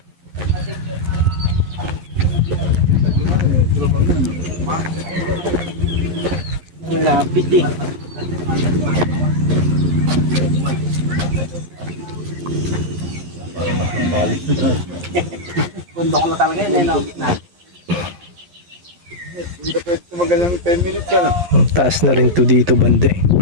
Lapit eh. Bundok na talaga yun, no? Hindi ka pwede tumagal ng 10 minutes, ano? Ang taas na rin to dito banda eh.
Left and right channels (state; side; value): late; left; 11 ms